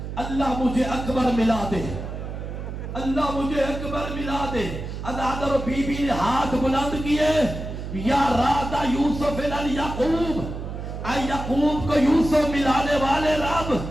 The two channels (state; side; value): noise; right; hum, 7 dB below the sound